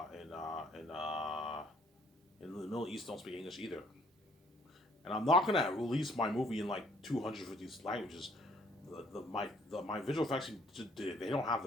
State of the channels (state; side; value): normal; both; correlation 0.62